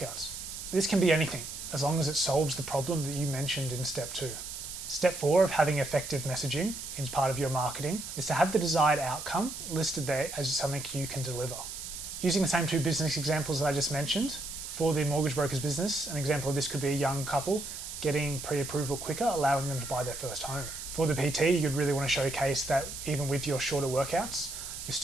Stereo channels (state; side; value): noise; right; hiss, 8 dB below the sound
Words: This can be anything, as long as it solves the problem that you mentioned in step 2. Step 4 of having effective messaging as part of your marketing is to have the desired outcome listed there as something you can deliver. Using the same 2 business examples that I just mentioned, for the mortgage broker's business, an example of this could be a young couple getting pre-approval quicker, allowing them to buy their first home. For the PT, you'd really want to showcase that even with your shorter workouts, you're